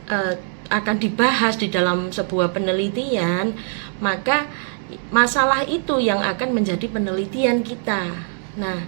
dibahas di dalam sebuah penelitian, maka masalah itu yang akan menjadi penelitian kita. Nah,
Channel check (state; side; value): silent; left; 59 dB below the other